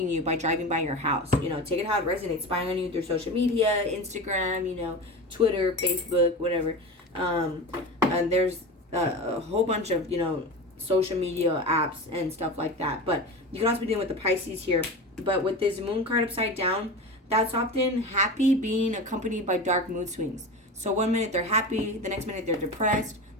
you by driving by your house. You know, take it how it resonates. Spying on you through social media, Instagram, you know, Twitter, Facebook, whatever. And there's a whole bunch of, you know, social media apps and stuff like that. But you can also be dealing with the Pisces here. But with this Moon card upside down, that's often happy being accompanied by dark mood swings. So one minute they're happy, the next minute they're depressed,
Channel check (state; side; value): normal; both; correlation 0.28